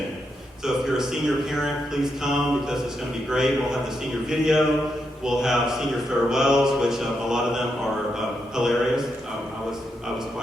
So if you're a senior parent, please come, because it's going to be great. We'll have the senior video. We'll have senior farewells, which a lot of them are hilarious. I was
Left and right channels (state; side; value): normal; both; correlation 0.83